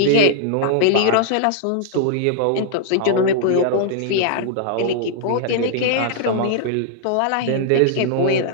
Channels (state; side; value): different; both; correlation -0.01